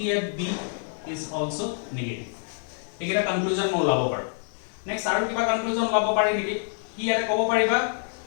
at b is also negative एकेटा conclusion মই ওলাব পাৰো next আৰু কিবা conclusion ওলাব পাৰি নেকি কি ইয়াতে ক'ব পাৰিবা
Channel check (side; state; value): right; silent; digital silence